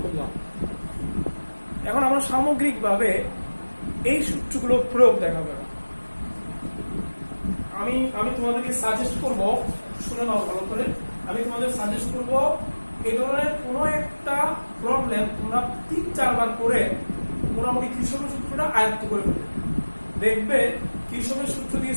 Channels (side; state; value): both; inverted; correlation -1.00